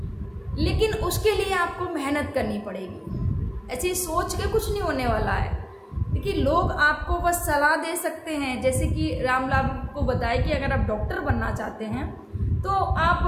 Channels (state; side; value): identical; both; correlation 1.00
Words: लेकिन उसके लिए आपको मेहनत करनी पड़ेगी। ऐसे ही सोच के कुछ नहीं होने वाला है। देखिए लोग आपको बस सलाह दे सकते हैं, जैसे कि रामलाल को बताया कि अगर आप डॉक्टर बनना चाहते हैं तो आप